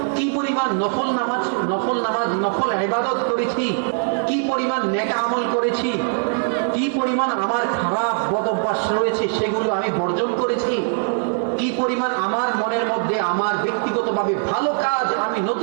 কি পরিমাণ নফল ইবাদত করেছি, কি পরিমাণ নেক আমল করেছি, কি পরিমাণ আমার খারাপ বদ অভ্যাস রয়েছে সেগুলো আমি বর্জন করেছি, কি পরিমাণ আমার মনের মধ্যে আমার ব্যক্তিগতভাবে ভালো কাজ আমি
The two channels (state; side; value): silent; left; 63 dB below the other